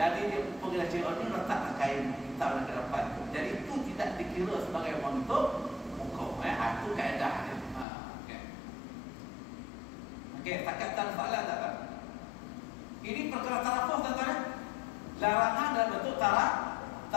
dia pergi cari oning letak kain kita dekat depan tu. Jadi itu tidak dikira sebagai untuk muka. Itu kaedah dia. Okey, takat tak soalan tak? Ini perkara tarafuh tuan-tuan. Larangan dalam bentuk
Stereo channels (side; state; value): right; drops out; at 7.9 s